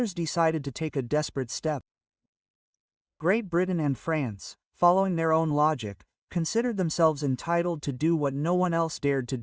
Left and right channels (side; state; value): both; identical; correlation 1.00